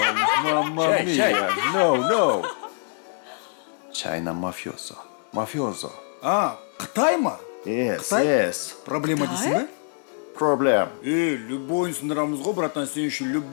Мамма Шай. мия. No. Чайна мафиозо. Мафиозо. А, Қытай ма? Yes. Проблема дейсің ба? Проблем. Любойын сындырамыз ғой, братан, сен үшін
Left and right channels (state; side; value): silent; right; digital silence